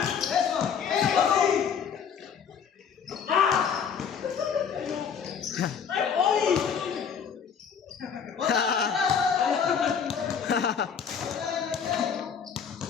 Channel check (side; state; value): right; quieter; 7.1 dB